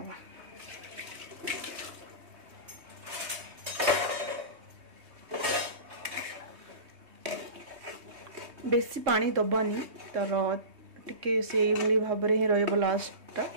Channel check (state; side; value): late; left; 3.2 ms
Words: बेसी पानी दबानी तर टिके से भाई भाव में ही रही लास्ट